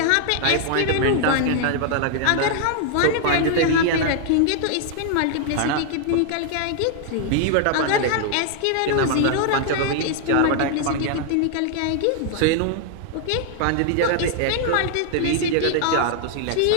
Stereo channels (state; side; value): different; both; correlation 0.00